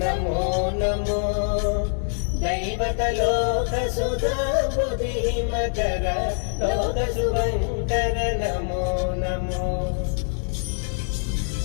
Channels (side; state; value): right; silent; digital silence